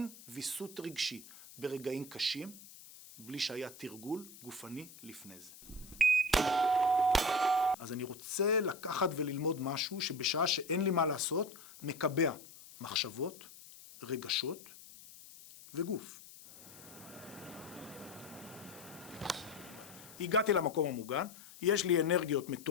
ויסות רגשי ברגעים קשים, בלי שהיה תרגול גופני לפני זה. אז אני רוצה לקחת וללמוד משהו שבשעה שאין לי מה לעשות, מקבע מחשבות, רגשות וגוף. הגעתי למקום המוגן, יש לי אנרגיות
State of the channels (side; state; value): left; noise; hiss, 18 dB below the sound